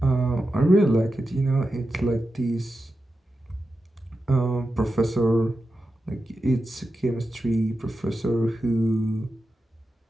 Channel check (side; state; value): both; normal; correlation 0.91